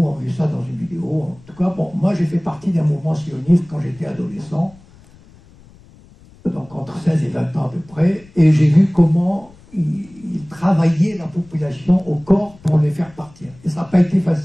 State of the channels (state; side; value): noise; left; rumble, 25 dB below the sound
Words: ont vu ça dans une vidéo. En tout cas, bon, moi j'ai fait partie d'un mouvement sioniste quand j'étais adolescent, donc entre 16 et 20 ans à peu près, et j'ai vu comment ils travaillaient la population au corps pour les faire partir. Et ça n'a pas été